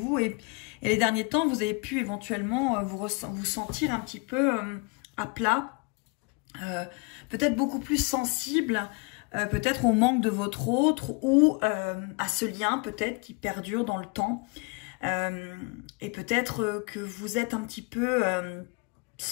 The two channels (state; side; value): quieter; right; 31.1 dB